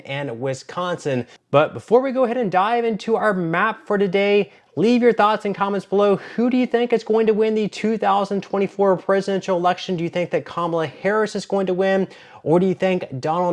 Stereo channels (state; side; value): identical; both; correlation 1.00